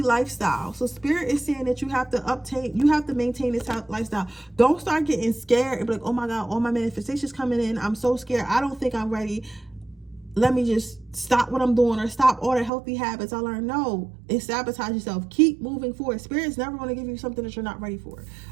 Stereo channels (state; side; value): drops out; left; at 12.7 s